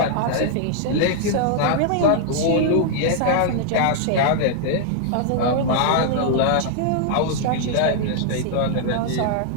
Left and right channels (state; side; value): different; both; correlation -0.01